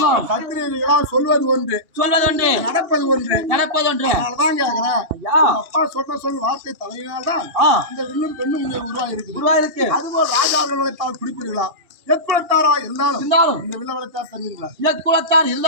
சத்திரியர்களா சொல்வது ஒன்று சொல்வதொன்று நடப்பது ஒன்று நடப்பதொன்று. அதனாலதான் கேக்குறேன் ஐயா அப்பா சொன்ன சொல் வார்த்தை தலையினால்தான் ஆ, இந்த வில்லும் பெண்ணும் இங்கே உருவாகி இருக்குது உருவாயிருக்கு. அதுபோல் ராஜார்கள் வளைத்தால் குறிப்பீர்களா எக்குலத்தாரா இருந்தாலும் இருந்தாலும் இந்த வில்ல வளைத்தால் தருவீர்களா இயக்குலத்தான்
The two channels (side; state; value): left; late; 2.8 ms